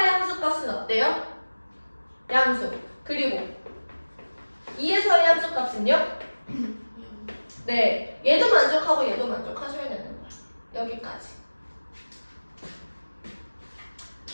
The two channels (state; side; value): inverted; both; correlation -1.00